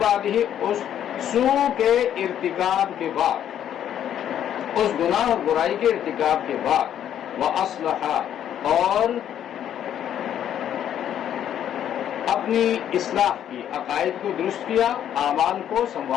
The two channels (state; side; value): quieter; right; 10.2 dB